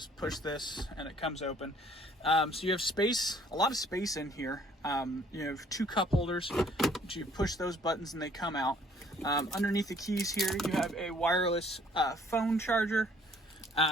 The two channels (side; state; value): both; normal; correlation 0.59